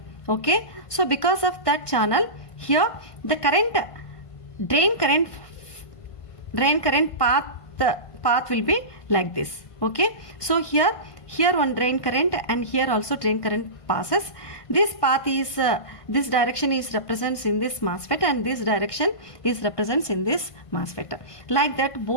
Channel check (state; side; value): late; right; 1.5 ms